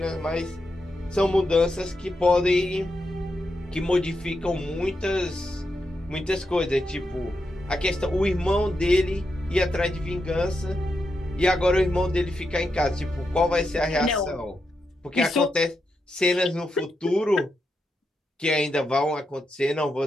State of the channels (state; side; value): normal; both; correlation 0.85